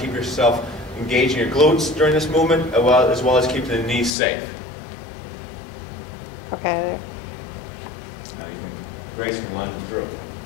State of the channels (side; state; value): right; drops out; at 4.1 s